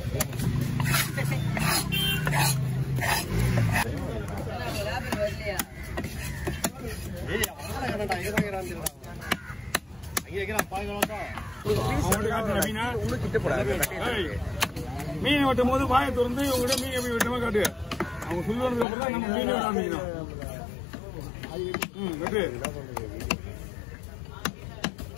மீன் வெட்டும் போது வாயை திறந்து உங்ககிட்ட மீன் எப்படி வெட்டமா காட்டு. அவங்க சொல்லுவதுக்கு அப்புறம் தான் நம்ம மீன் வெட்ட ஆரம்பிக்கணும். வெட்டு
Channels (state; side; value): drops out; right; at 18.9 s